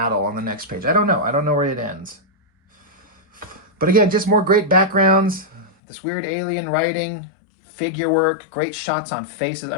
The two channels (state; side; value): drops out; right; at 5.7 s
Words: on the next page. I don't know. I don't know where it ends. But again, just more great backgrounds. This weird alien writing. Figure work, great shots on faces.